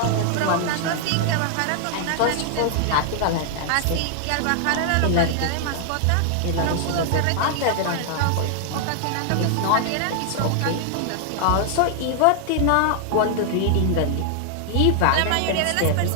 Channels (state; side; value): different; both; correlation 0.00